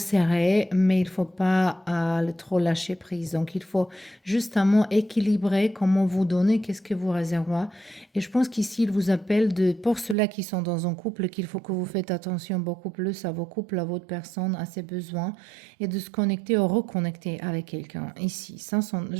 mais il ne faut pas le trop lâcher prise. Donc, il faut justement équilibrer comment vous donnez, qu'est-ce que vous réservez. Et je pense qu'ici, il vous appelle pour ceux-là qui sont dans un couple, qu'il faut que vous faites attention beaucoup plus à vos couples, à votre personne, à ses besoins, et de se connecter ou reconnecter avec quelqu'un. Ici, ça sont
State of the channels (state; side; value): drops out; left; at 10.2 s